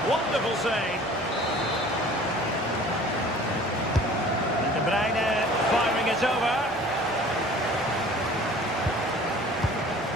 Wonderful save. Bruyne firing it over.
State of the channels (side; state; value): both; normal; correlation 0.47